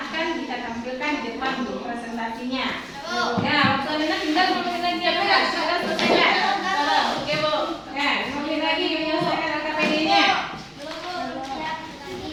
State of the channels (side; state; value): both; identical; correlation 1.00